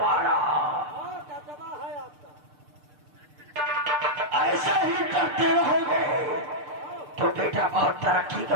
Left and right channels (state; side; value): late; left; 6.7 ms